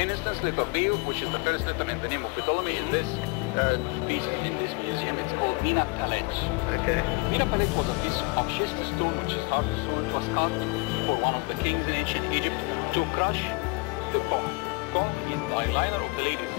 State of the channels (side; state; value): right; quieter; 27.8 dB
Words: letter B, which is the first letter in the name of Ptolemy, in this piece, in this museum, it's called Mina Palet. Okay. Mina Palet was a piece of schist stone, which is hard stone. It was carved for one of the kings in ancient Egypt to crush the cough. Cough is the eyeliner of the ladies.